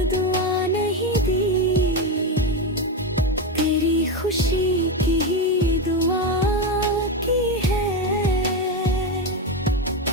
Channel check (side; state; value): both; normal; correlation 0.13